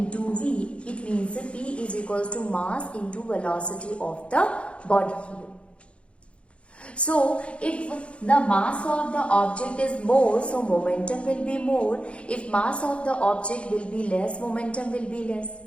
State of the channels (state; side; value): late; right; 0.060 ms